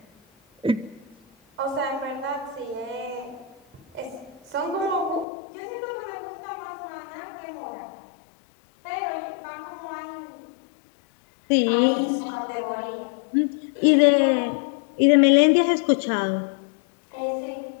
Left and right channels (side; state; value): right; drops out; at 5.2 s